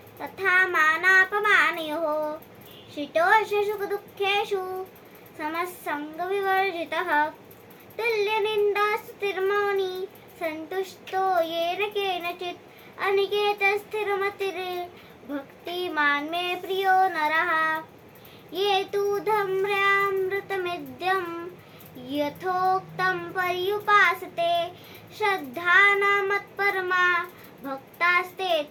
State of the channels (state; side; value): identical; both; correlation 1.00